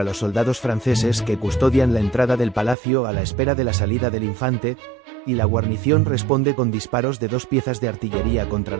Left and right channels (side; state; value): left; drops out; at 2.8 s